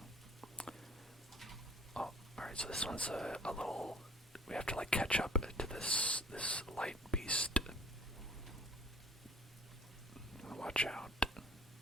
Oh, alright, so this one's a little... We have to catch up to this light beast. Watch out.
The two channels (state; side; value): normal; both; correlation 0.51